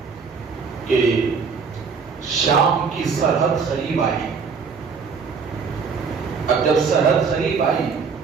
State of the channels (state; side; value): quieter; left; 5.5 dB